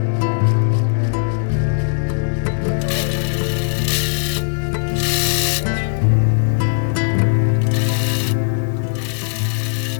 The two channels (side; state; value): right; silent; digital silence